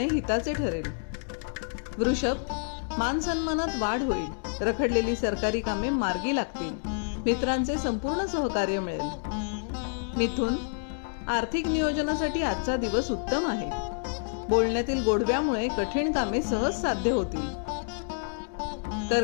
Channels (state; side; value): silent; right; digital silence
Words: हिताचे ठरेल. वृषभ, मान सन्मानात वाढ होईल. रखडलेली सरकारी कामे मार्गी लागतील. मित्रांचे संपूर्ण सहकार्य मिळेल. मिथुन, आर्थिक नियोजनासाठी आजचा दिवस उत्तम आहे. बोलण्यातील गोडव्यामुळे कठीण कामे सहज साध्य होतील.